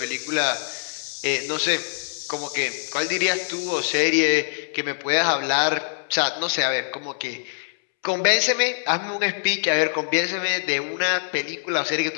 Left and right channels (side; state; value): right; silent; 63 dB below the other